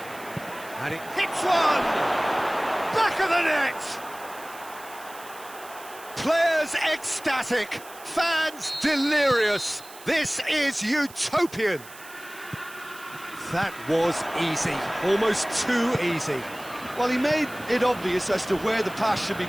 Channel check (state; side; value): noise; right; hiss, 18 dB below the sound